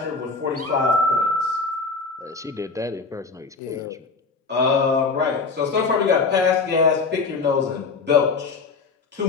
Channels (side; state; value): right; quieter; 4.3 dB